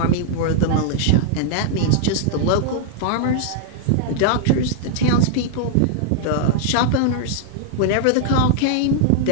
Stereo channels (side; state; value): both; different; correlation -0.01